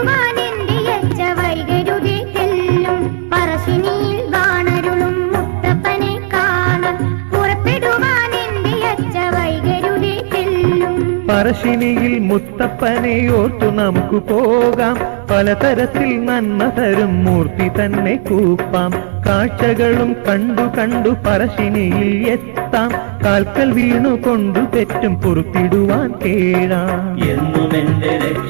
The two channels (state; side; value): silent; left; 68 dB below the other